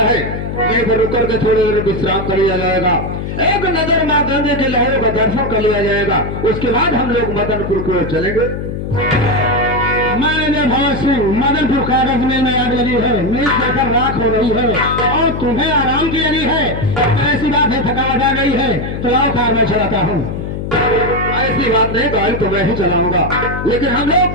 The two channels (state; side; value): noise; left; hum, 5 dB below the sound